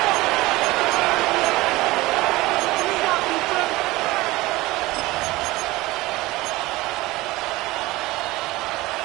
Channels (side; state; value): left; quieter; 19.7 dB